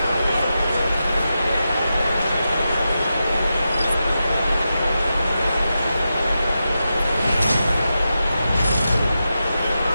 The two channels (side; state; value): both; inverted; correlation -0.90